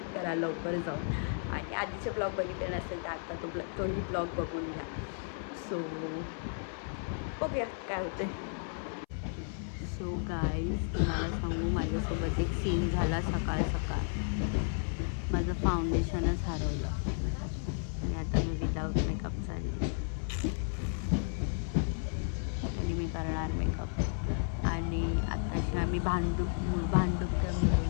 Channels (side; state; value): right; silent; 56 dB below the other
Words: करा लवकर जाऊन. आणि आधीचे ब्लॉग बघितले नसेल तर आता तोही ब्लॉग बघून घ्या. सो बघूया काय होतं आहे. सो गाईज, तुम्हाला सांगू माझ्यासोबत एक सीन झाला सकाळ माझं फाउंडेशनच हरवलं आणि आता मी विदाऊट मेकअप चालली आणि मी करणार मेकअप. आणि आत्ताशी आम्ही भांडूप